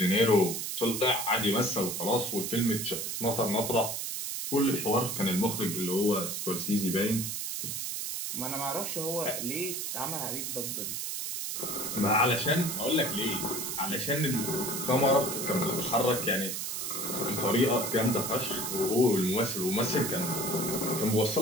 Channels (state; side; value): noise; right; hiss, 3 dB below the sound